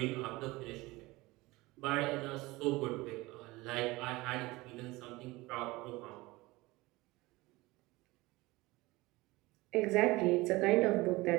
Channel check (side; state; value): left; quieter; 21.1 dB